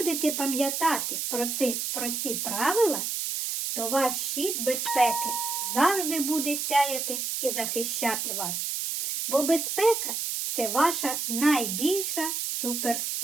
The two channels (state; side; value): noise; right; hiss, 2 dB below the sound